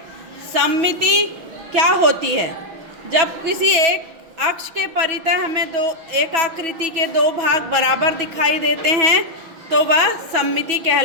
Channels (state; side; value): late; left; 6.1 ms